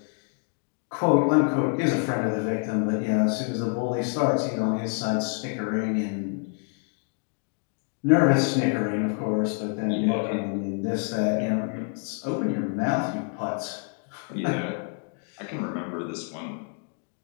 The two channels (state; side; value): quieter; right; 38.6 dB